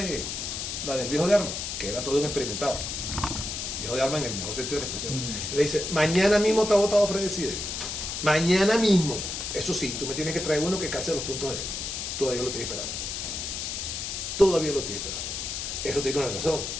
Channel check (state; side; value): noise; left; hiss, 4 dB below the sound